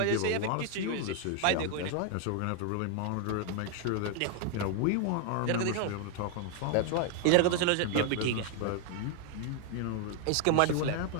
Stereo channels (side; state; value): both; different; correlation 0.00